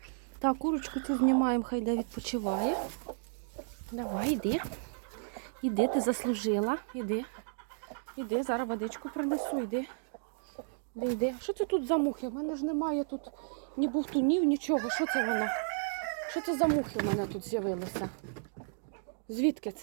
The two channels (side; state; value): left; silent; digital silence